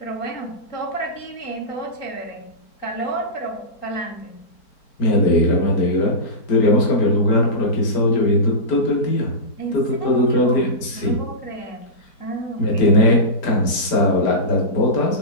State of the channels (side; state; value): right; late; 4.4 ms